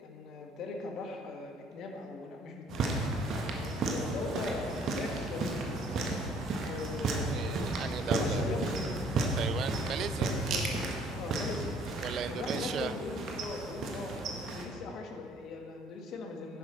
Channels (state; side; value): normal; both; correlation 0.59